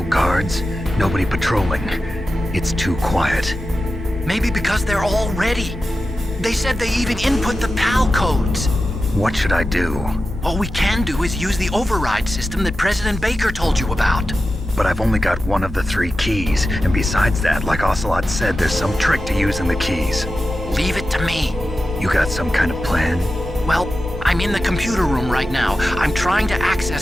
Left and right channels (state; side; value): normal; both; correlation 0.92